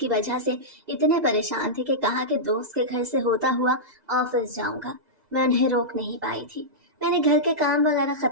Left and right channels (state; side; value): late; left; 2.0 ms